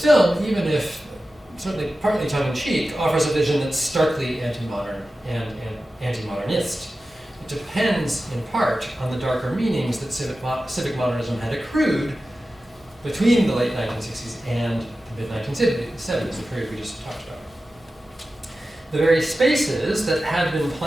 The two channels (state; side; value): normal; both; correlation 0.94